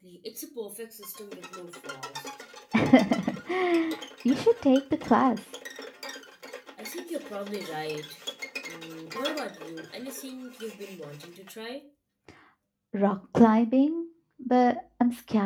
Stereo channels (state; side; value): identical; both; correlation 1.00